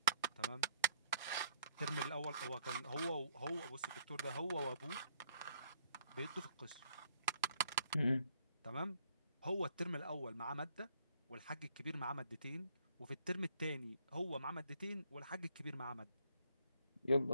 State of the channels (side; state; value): both; inverted; correlation -0.67